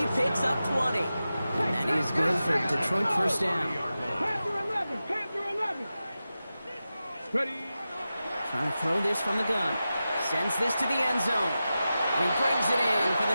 picks up 20. And that is good for Detroit first down. Panther 11. Panther 11. Ready. Trying to throw this from the gun. Sends this to the end zone. And he brings it in for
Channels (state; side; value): inverted; both; correlation -0.93